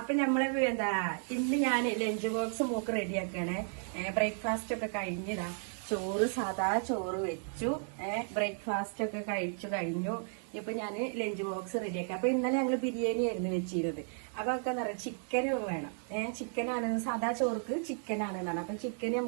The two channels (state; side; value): silent; left; 55 dB below the other